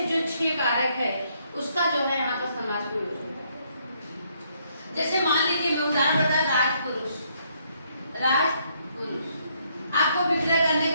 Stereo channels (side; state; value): both; inverted; correlation -0.71